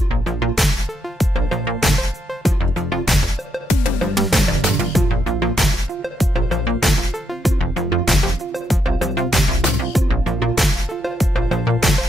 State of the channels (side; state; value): both; normal; correlation 0.79